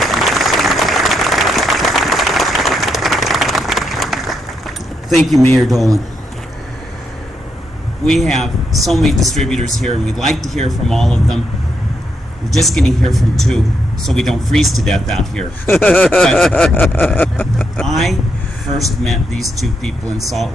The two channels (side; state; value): both; normal; correlation 0.80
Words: Thank you, Mayor Dolan. We have so many distributors here, and we'd like to hear from all of them. We're just going to hear from two, so we don't freeze to death out here. But I first met these two people in Salt